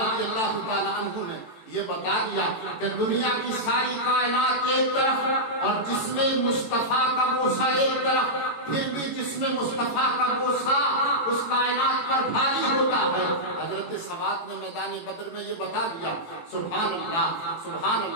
अल्लाह ताला अन्हु ने ये बता दिया कि दुनिया की सारी कायनात एक तरफ और जिसमें मुस्तफ़ा का बोसा एक तरफ, फिर भी जिसमें मुस्तफ़ा का बोसा उस कायनात पर भारी होता है। हजरत सवाद ने मैदान बद्र में ये बता दिया। सुभान अल्लाह, सुभान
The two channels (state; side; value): late; right; 18 ms